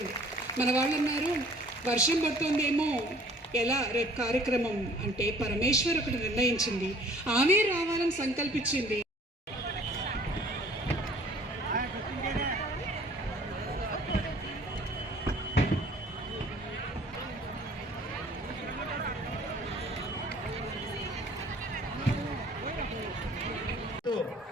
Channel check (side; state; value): both; normal; correlation 0.53